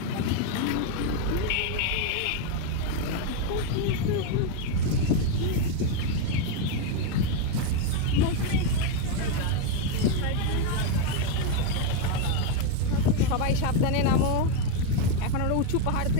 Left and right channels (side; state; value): both; different; correlation 0.02